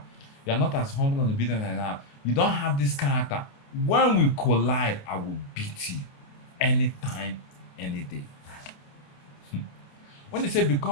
you're not as humble and obedient as I have, you don't have this character. When we collide, I will beat you anytime, any day. When they say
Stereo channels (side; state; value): right; late; 29 ms